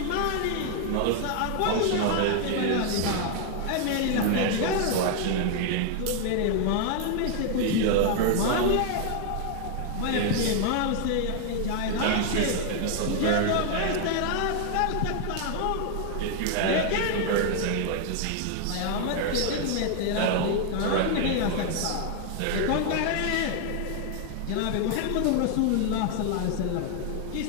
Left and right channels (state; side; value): different; both; correlation 0.00